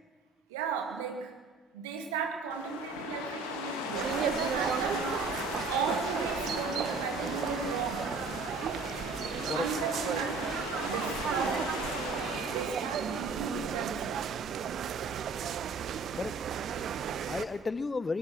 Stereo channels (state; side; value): quieter; left; 3.8 dB